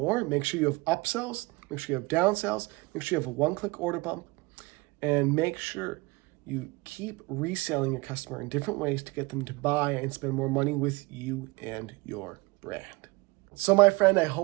make sure you have upsells, make sure you have downsells, make sure you have a one-click order bump, and make sure you keep reselling your customer in different ways to get them to buy and spend more money with you and your brand. So my friend, I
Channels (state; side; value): quieter; left; 24.5 dB